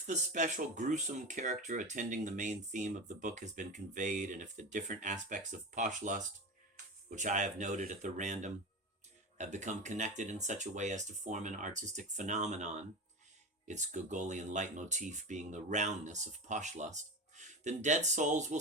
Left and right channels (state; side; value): normal; both; correlation 0.25